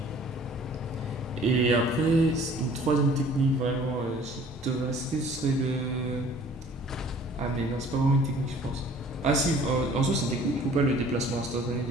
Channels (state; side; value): normal; both; correlation 0.52